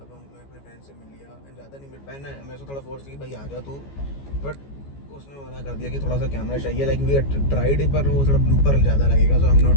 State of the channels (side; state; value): right; late; 14 ms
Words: अब मैं अपने फ्रेंड से मिल लिया एंड ज़्यादा नहीं मिल पाया ना, मेरे से थोड़ा फोर्स की भाई आ जा तू, बट उसने मना कर दिया कि थोड़ा सा कैमरा चाहिए। लाइक वी ट्राइड पर वो थोड़ा ब्लूपर ज़्यादा लगेगा, so I am not